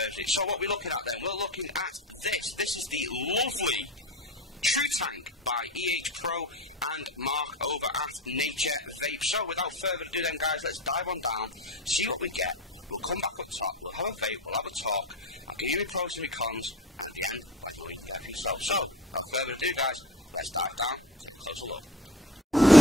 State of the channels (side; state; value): both; normal; correlation 0.32